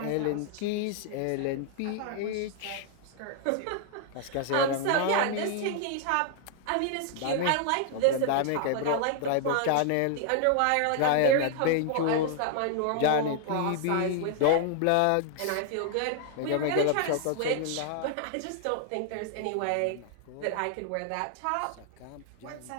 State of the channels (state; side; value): different; both; correlation 0.00